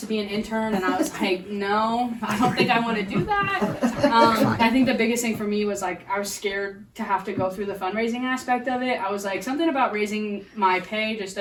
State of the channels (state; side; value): identical; both; correlation 1.00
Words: be an intern, and I was like, no, I don't think I want to do that. I think the biggest thing for me was like I was scared to have to go through the fundraising aspect of it. I was like, something about raising my pay just